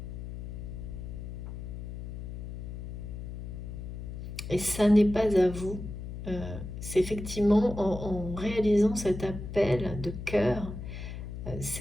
Et ça n'est pas à vous. C'est effectivement en réalisant cet appel de cœur,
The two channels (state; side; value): noise; left; hum, 8 dB below the sound